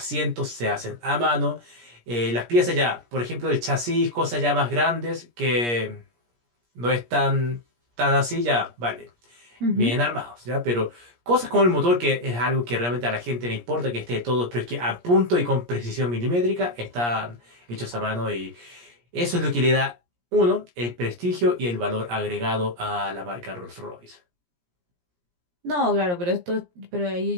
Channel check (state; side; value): late; left; 17 ms